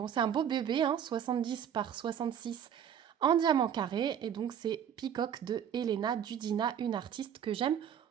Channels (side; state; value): left; quieter; 9.0 dB